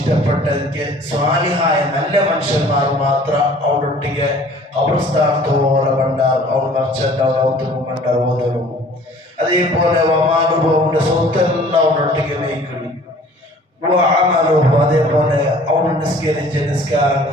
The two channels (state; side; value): normal; both; correlation 0.51